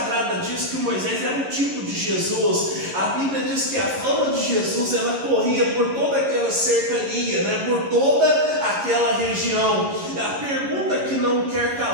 diz que Moisés era um tipo de Jesus. A Bíblia diz que a fama de Jesus, ela corria por toda aquela cercania, né? Por toda aquela região. A pergunta que não quer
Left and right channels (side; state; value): left; late; 11 ms